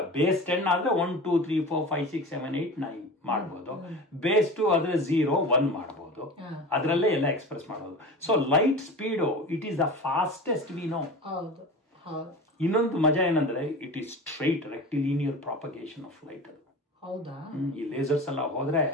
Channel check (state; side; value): normal; both; correlation 0.33